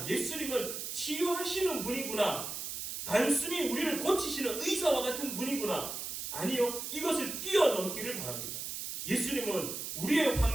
예수님은 치유하시는 분이구나. 단순히 우리를 고치시는 의사와 같은 분이구나. 아니요. 이것을 뛰어넘기를 바랍니다. 예수님은 우리의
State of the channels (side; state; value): right; noise; hiss, 5 dB below the sound